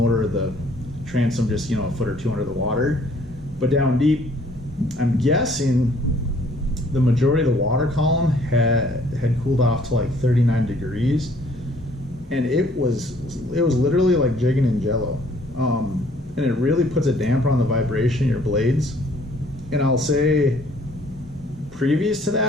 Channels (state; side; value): normal; both; correlation 0.60